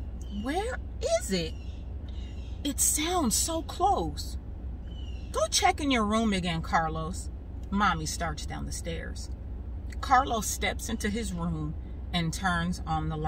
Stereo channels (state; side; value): identical; both; correlation 1.00